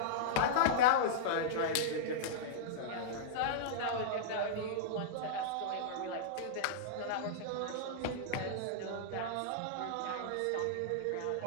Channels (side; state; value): both; different; correlation -0.02